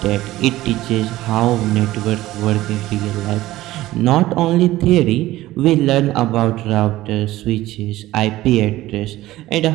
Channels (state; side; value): quieter; left; 16.3 dB